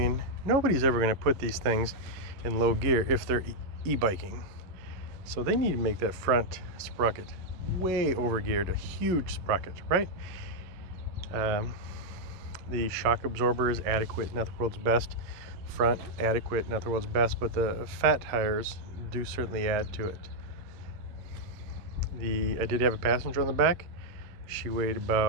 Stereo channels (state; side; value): late; left; 11 ms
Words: nobody's ever going to put these things in low gear if they're e-biking. So they need to make that front sprocket way overgeared, a huge sprocket, right? The shock absorber is adequate, not the world's best. Front, adequate, not the world's best, but the fat tires do certainly add to it. I did have a passenger on the back. She weighed